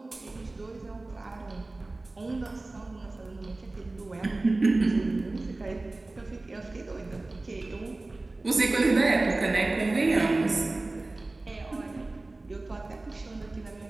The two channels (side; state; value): left; quieter; 3.0 dB